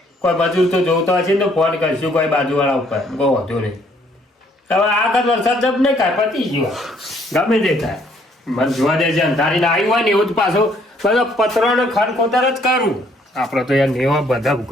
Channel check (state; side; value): normal; both; correlation 0.65